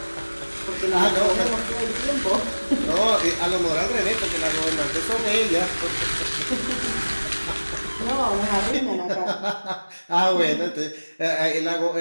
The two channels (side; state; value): both; inverted; correlation -1.00